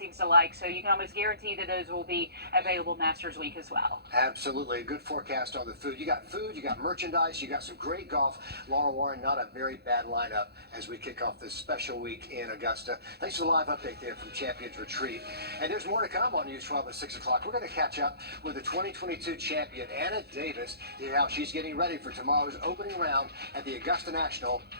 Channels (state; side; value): late; left; 0.47 ms